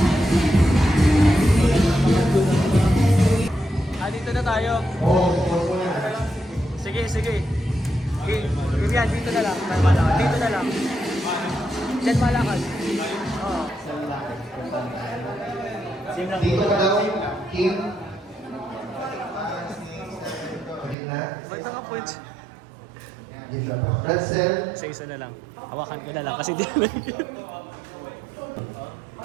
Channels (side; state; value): left; drops out; at 21.0 s